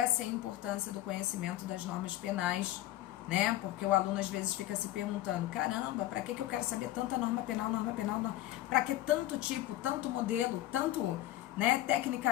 é a importância do conhecimento das normas penais, né? Porque o aluno às vezes fica se perguntando, caramba, para que eu quero saber tanta norma penal, para que tanto tipo, tanto modelo, tanto, né,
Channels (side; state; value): right; quieter; 14.8 dB